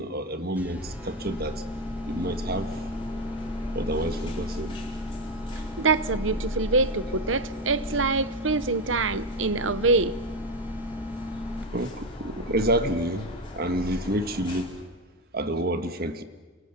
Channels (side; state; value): both; normal; correlation 0.11